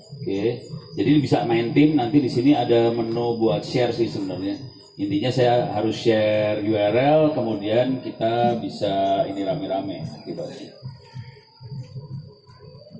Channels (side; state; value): both; identical; correlation 1.00